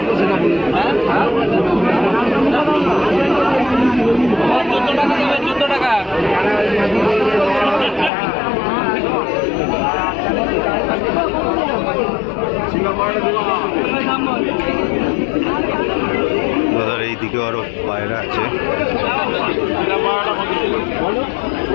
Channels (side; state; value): right; drops out; at 8.1 s